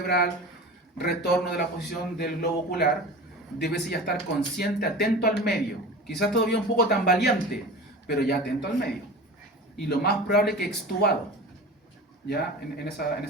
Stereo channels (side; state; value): both; normal; correlation 0.34